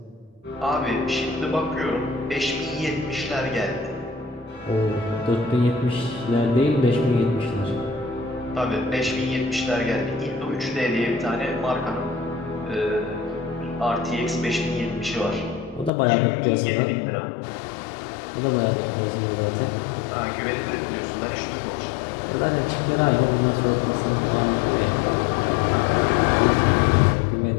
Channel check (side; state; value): right; drops out; at 15.9 s